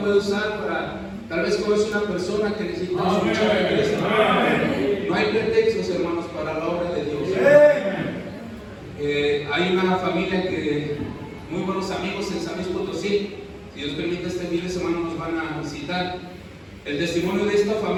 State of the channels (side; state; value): both; identical; correlation 1.00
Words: puede usar para, tal vez conoce una persona que necesita escuchar a Cristo. No hay pretextos, hermanos, para la obra de Dios. Hay una familia que, muy buenos amigos en San Luis Potosí. Si Dios permite, este fin de semana nos van a visitar. El testimonio de esta